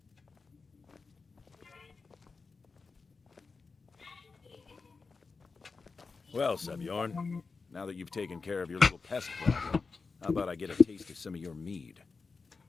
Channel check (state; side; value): quieter; right; 4.5 dB